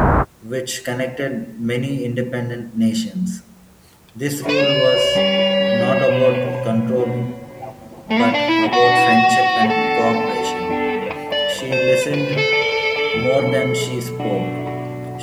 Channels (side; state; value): both; identical; correlation 1.00